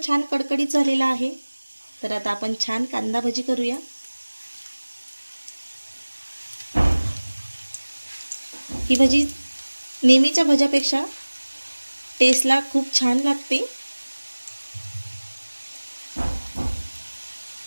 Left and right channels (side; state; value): both; inverted; correlation -1.00